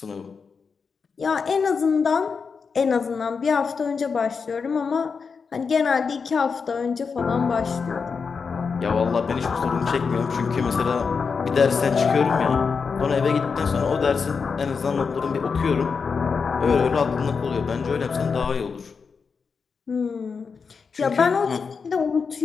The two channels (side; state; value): right; quieter; 5.4 dB